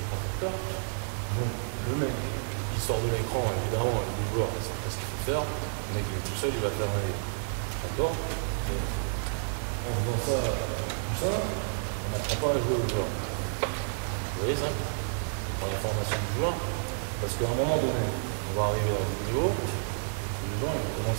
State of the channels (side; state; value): left; silent; digital silence